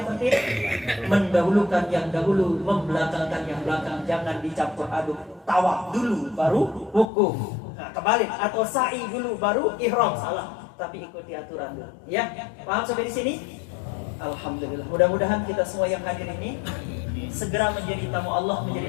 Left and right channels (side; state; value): right; drops out; at 7.1 s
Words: tertib, mendahulukan yang dahulu, membelakangkan yang belakang. Jangan dicampur aduk. Tawaf dulu baru wukuf. Nah, kebalik, atau sa'i dulu baru ihram. Salah. Tapi ikuti aturan dulu. Ya, paham sampai di sini? Alhamdulillah. Mudah-mudahan kita semua yang hadir ini segera menjadi tamu Allah,